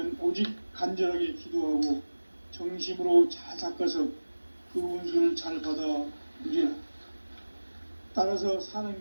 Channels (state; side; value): inverted; both; correlation -1.00